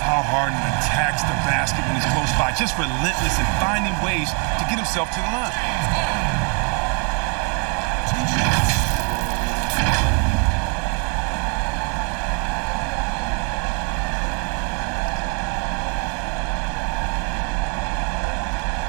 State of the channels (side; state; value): left; quieter; 36.4 dB